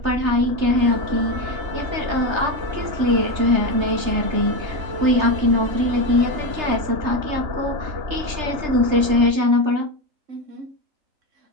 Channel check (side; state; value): left; late; 3.3 ms